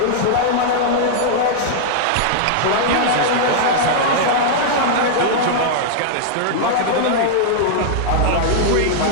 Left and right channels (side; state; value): both; different; correlation -0.01